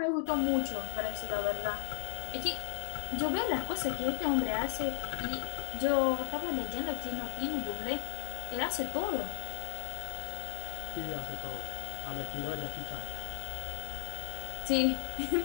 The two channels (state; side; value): silent; right; digital silence